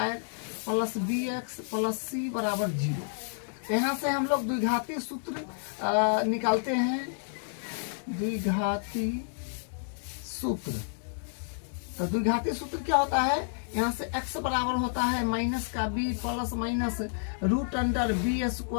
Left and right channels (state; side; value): silent; right; digital silence